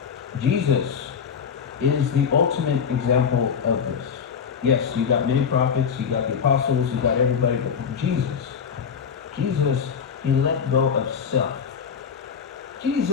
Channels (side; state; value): right; quieter; 6.8 dB